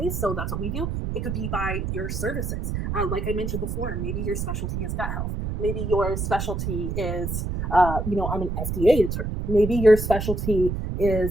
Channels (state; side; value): noise; right; rumble, 3 dB below the sound